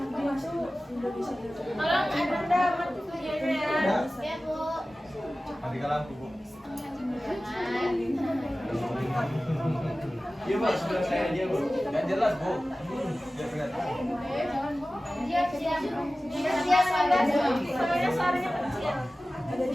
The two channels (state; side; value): normal; both; correlation 0.96